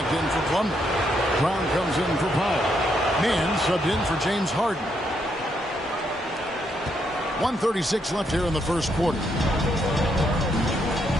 in for Plumlee. Brown comes in for Powell. Mann subbed in for James Harden. 1:36 left here in the first quarter.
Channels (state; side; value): normal; both; correlation 0.76